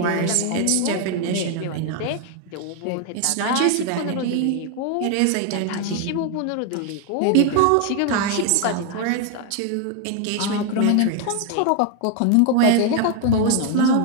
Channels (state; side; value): different; both; correlation 0.00